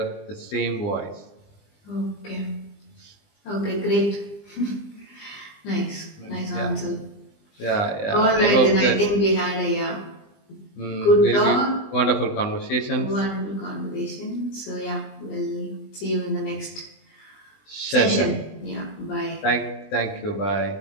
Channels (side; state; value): right; late; 20 ms